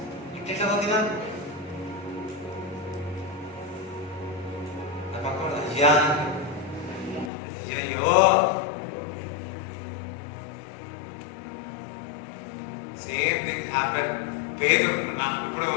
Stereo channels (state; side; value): drops out; right; at 7.3 s